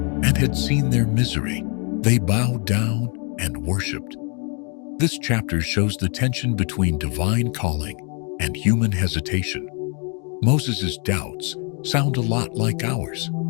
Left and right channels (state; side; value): quieter; right; 35.7 dB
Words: and had seen their misery, they bowed down and worshipped. This chapter shows the tension between divine calling and human hesitation. Moses' doubts sound a lot like ours.